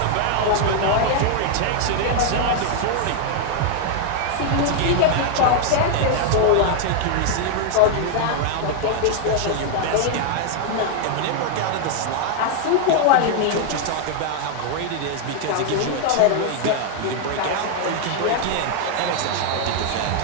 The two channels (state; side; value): different; both; correlation 0.00